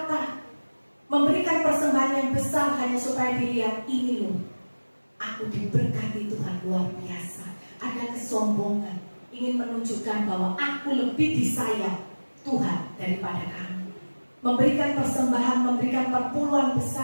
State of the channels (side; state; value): both; inverted; correlation -1.00